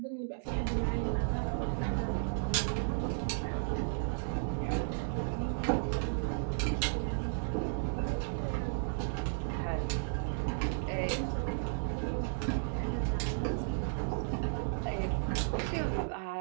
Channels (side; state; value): left; silent; digital silence